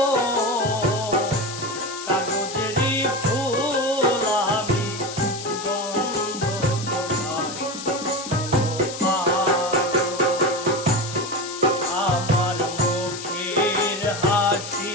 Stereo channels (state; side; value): noise; left; hiss, 10 dB below the sound